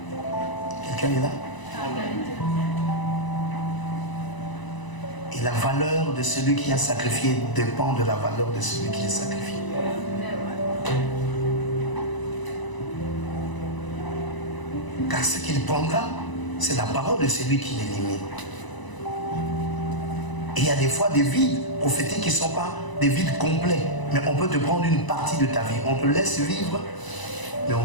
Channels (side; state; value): right; late; 1.0 ms